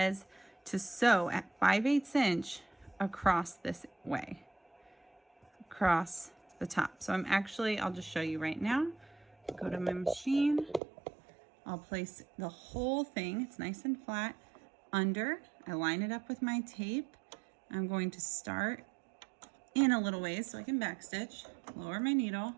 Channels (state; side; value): drops out; left; at 10.8 s